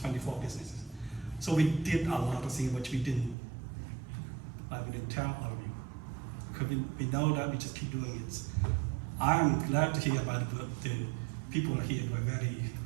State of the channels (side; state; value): left; drops out; at 3.4 s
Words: businesses. So we did a lot of things which we didn't tell all of you. Because we know that, we just keep doing it. I'm glad to hear about the people here who are very,